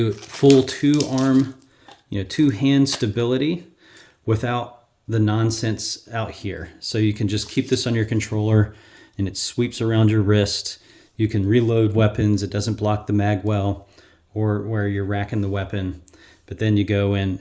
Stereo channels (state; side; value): identical; both; correlation 1.00